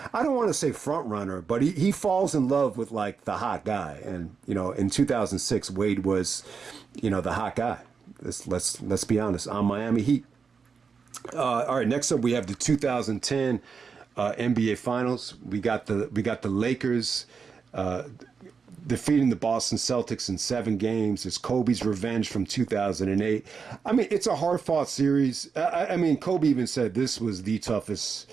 I don't want to say front runner, but he falls in love with like the hot guy. And, in 2006, Wade was, the hot guy. Let's be honest, on Miami Heat. All right, next up we have the 2010 NBA Finals. We got the Lakers defeating the Boston Celtics in 7 games. It's Kobe's revenge from 2008. I mean, it's a hard-fought series. I mean, Kobe even said this was the toughest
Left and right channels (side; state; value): left; quieter; 5.6 dB